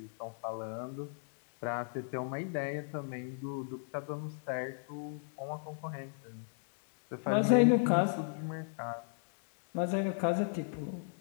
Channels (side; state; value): right; silent; digital silence